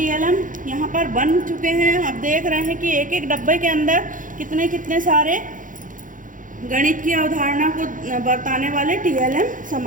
यहाँ पर बन चुके हैं। अब देख रहे हैं कि एक एक डब्बे के अंदर कितने कितने सारे गणित की अवधारणा को बताने वाले TLM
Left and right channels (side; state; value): left; late; 0.38 ms